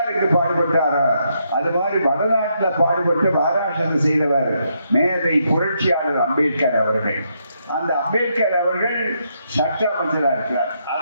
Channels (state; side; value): inverted; both; correlation -0.77